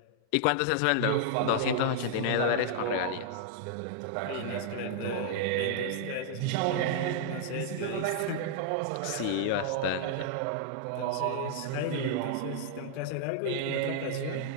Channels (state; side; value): different; both; correlation -0.01